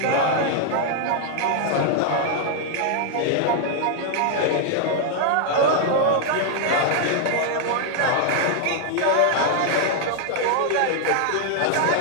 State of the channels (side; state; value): both; different; correlation 0.00